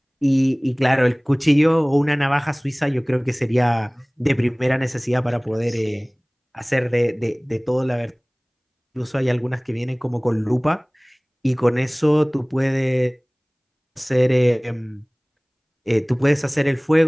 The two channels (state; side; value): identical; both; correlation 1.00